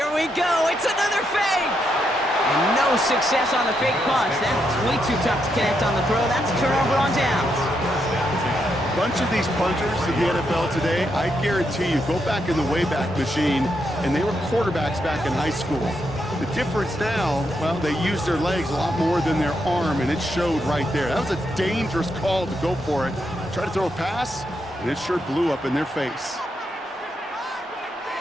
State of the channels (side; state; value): both; normal; correlation 0.80